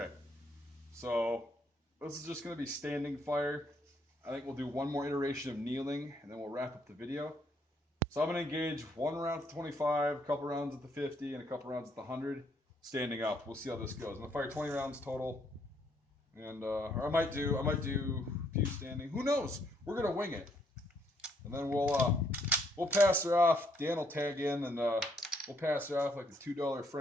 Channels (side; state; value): both; normal; correlation 0.70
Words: so this is just going to be standing fire. I think we'll do one more iteration of kneeling, and then we'll wrap up the video. So I'm going to engage 1 round at the 25, a couple rounds at the 50, and a couple rounds at the 100, standing up. We'll see how this goes. I'm going to fire 20 rounds total, and or I might do a few standing. Who knows? We're going to wing it, and then we'll pass her off. Dan will tag in, and we'll pass her off like the $2